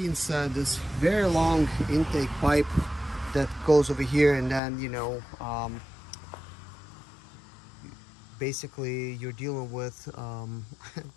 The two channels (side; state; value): right; drops out; at 4.6 s